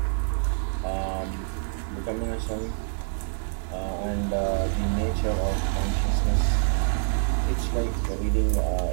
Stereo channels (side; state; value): left; silent; digital silence